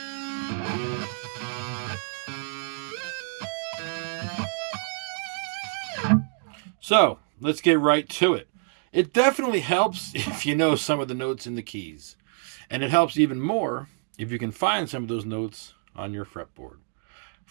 So, let's get right to it. It definitely helps if you know some of the notes in the keys. And it helps even more if you can find some of those notes on your fretboard.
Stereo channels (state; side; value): silent; left; 57 dB below the other